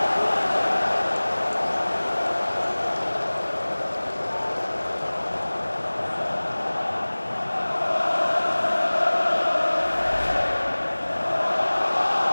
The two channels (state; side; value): inverted; both; correlation -1.00